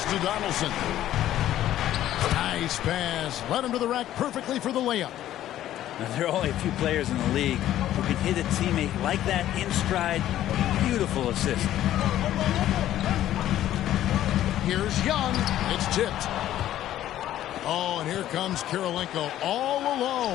to Donaldson. Nice pass. Led him to the rack perfectly for the layup. Now, there are only a few players in the league who can hit a teammate like that in stride. Beautiful assist. Here's Young. It's tipped. Oh, and here comes Kirilenko all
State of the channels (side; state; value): right; quieter; 12.7 dB